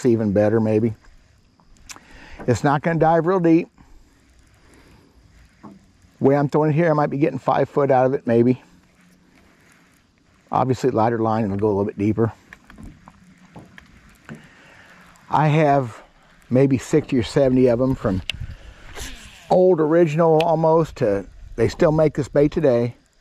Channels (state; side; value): identical; both; correlation 1.00